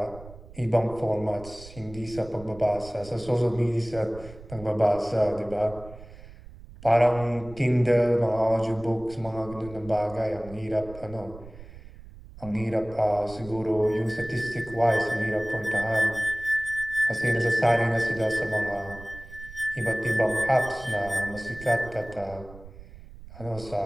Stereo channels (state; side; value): noise; right; rumble, 17 dB below the sound